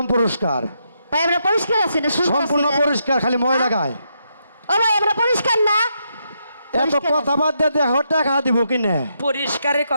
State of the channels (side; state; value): both; inverted; correlation -0.80